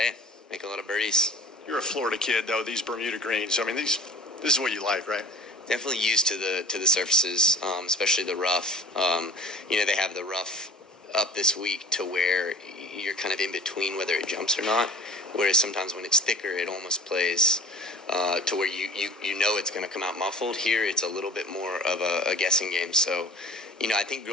Make a lot of birdies. You're a Florida kid, though. These Bermuda greens. I mean, this is what you like, right? Definitely used to the surfaces, especially the rough. They have the rough up this week to where you're kind of in between whether it jumps or not. Whereas sometimes when it's thicker, it almost plays to where you know it's going to come out muffled. Here, it's a little bit more of a guessing game. So, I think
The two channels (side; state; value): both; normal; correlation 0.43